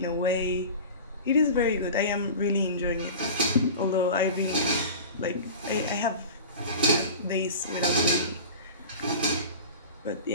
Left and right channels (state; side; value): inverted; both; correlation -0.34